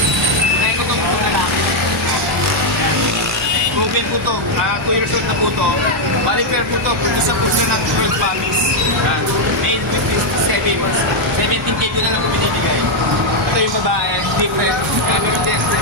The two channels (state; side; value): normal; both; correlation 0.00